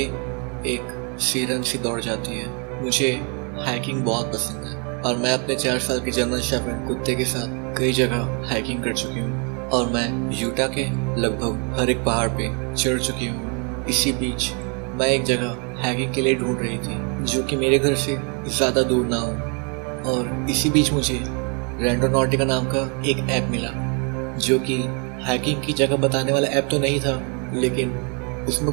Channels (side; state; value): left; quieter; 36.5 dB